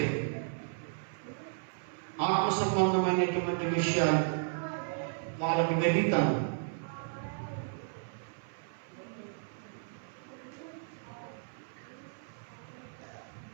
ఆత్మ సంబంధమైనటువంటి విషయాలు వాళ్ళకి గణితాలు.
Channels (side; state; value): left; silent; 55 dB below the other